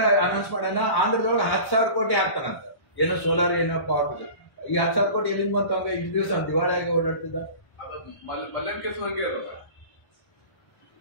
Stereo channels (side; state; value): right; late; 1.1 ms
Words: ಅನೌನ್ಸ್ ಮಾಡೋಣ, ಆಂಧ್ರದೊಳಗೆ 10,000 ಕೋಟಿ ಹಾಕ್ತಾನಂತ. ಏನೋ ಸೋಲಾರ್ ಏನೋ ಪವರ್ ಬಗ್ಗೆ. ಈ 10,000 ಕೋಟಿ ಎಲ್ಲಿಂದ ಬಂತು? ಹಂಗ ಇಷ್ಟು ದಿವಸ ದಿವಾಳಿ ಆಗಿ ಓಡಾಡ್ತಿದ್ದ.